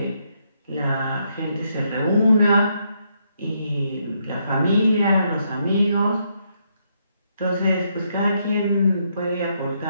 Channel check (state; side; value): inverted; both; correlation -0.76